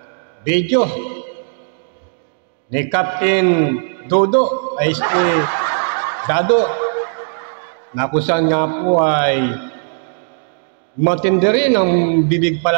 video ni Captain Dodo ay si Dado na kung saan nga po ay matindi rin ang bibig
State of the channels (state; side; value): silent; left; digital silence